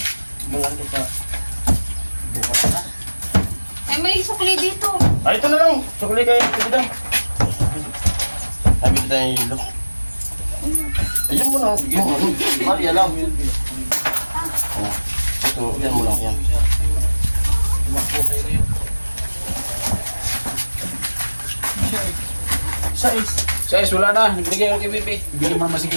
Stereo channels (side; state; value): both; inverted; correlation -1.00